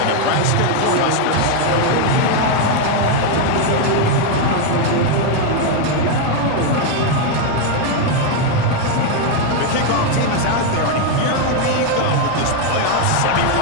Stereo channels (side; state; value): both; different; correlation 0.01